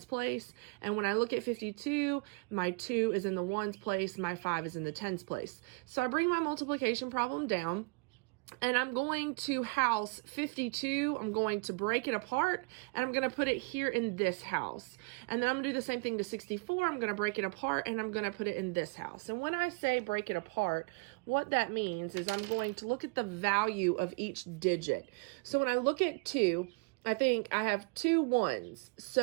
place. And when I look at 52, my 2 is in the ones place, my 5 is in the tens place. So I bring my multiplication problem down, and I'm going to house 52. I'm going to break it apart, and I'm going to put it here in this house. And then I'm going to do the same thing to 64. I'm going to break it apart, and I'm going to put it in this house. And when I say break it apart, what that means is I'm going to look at the value of each digit. So when I look at 2, I think I have 2 ones.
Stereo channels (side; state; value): left; quieter; 30.7 dB